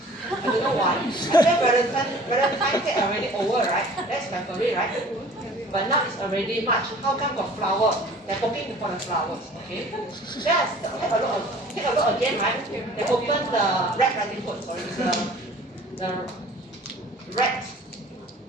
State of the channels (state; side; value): normal; both; correlation 0.48